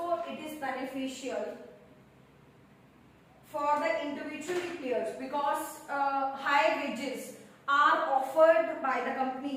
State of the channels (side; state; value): both; identical; correlation 1.00